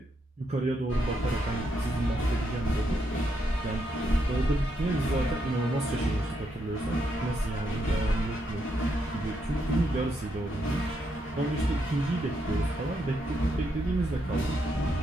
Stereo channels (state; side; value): normal; both; correlation 0.79